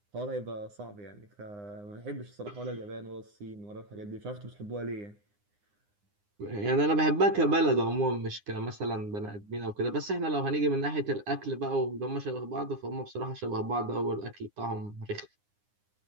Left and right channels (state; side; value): late; left; 9.8 ms